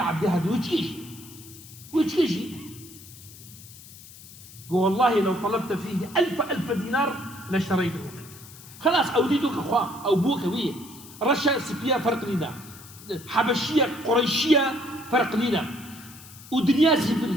هذا ويتكيشي والله لو طلبت فيه ألف دينار لاشتريته منك خلاص أوديتك أخوة أو بوك ويه رشا سبيا فرق لنا حبشية قريشية فرق لنا ودنيا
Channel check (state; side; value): noise; left; hiss, 18 dB below the sound